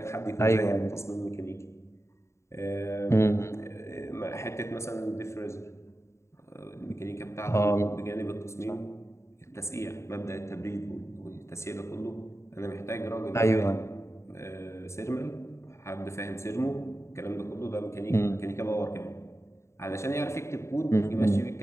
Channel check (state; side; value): late; right; 0.13 ms